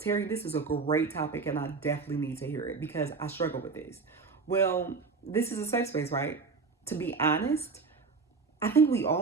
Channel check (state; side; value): quieter; left; 4.6 dB